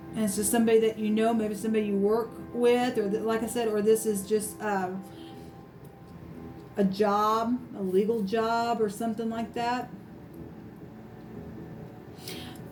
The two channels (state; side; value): identical; both; correlation 1.00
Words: and it's just somebody that maybe somebody you work with, or like I said, or this is just a job, a legal job or something like that.